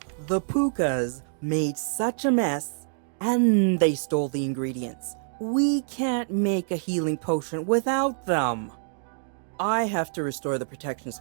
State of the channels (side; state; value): left; silent; digital silence